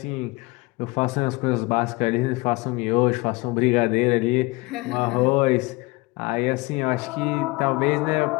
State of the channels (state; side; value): quieter; right; 24.6 dB